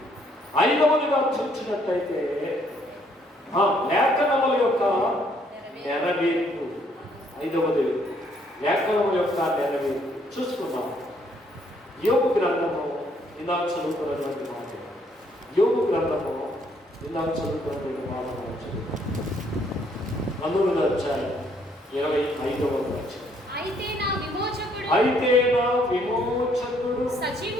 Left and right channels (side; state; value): both; normal; correlation 0.67